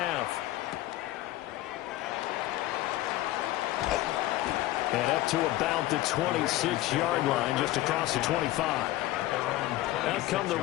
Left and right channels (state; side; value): quieter; right; 16.0 dB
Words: And up to about the 26-yard line, just across the 25. Out come the